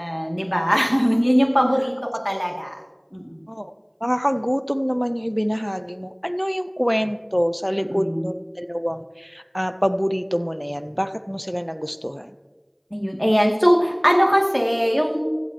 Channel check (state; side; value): identical; both; correlation 1.00